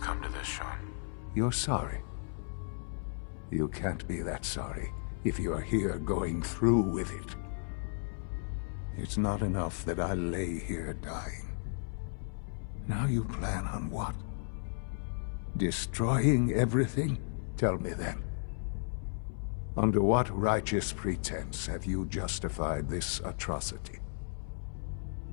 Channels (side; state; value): right; silent; 55 dB below the other